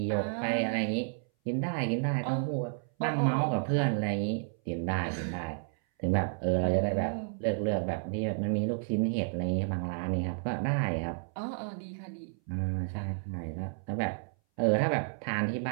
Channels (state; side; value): silent; left; 57 dB below the other